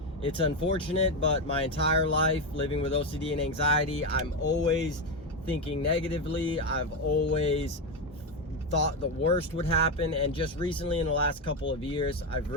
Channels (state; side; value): normal; both; correlation 0.10